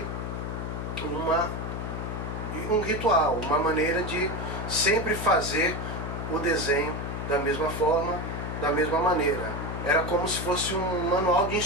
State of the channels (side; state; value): left; noise; hum, 4 dB below the sound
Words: um ritual, uma maneira de sempre fazer o desenho da mesma forma, da mesma maneira. Era como se fosse um manual de